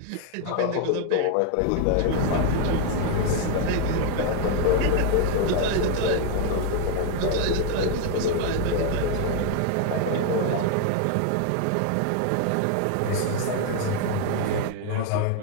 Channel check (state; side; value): different; both; correlation 0.01